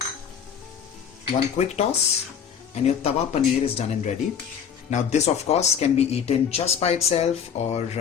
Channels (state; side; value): quieter; right; 7.7 dB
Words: One quick toss, and your tawa paneer is done and ready. Now, this of course can be eaten just by itself or